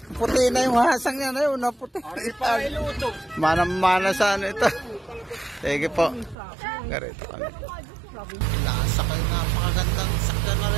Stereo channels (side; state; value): left; drops out; at 6.4 s